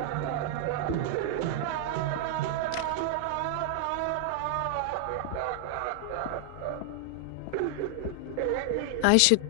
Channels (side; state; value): both; different; correlation 0.00